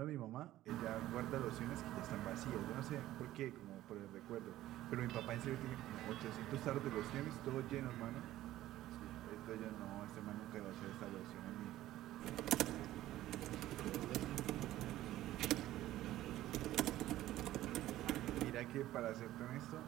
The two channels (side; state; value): left; quieter; 14.6 dB